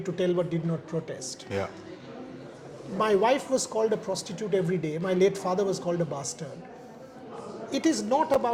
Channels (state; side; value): identical; both; correlation 1.00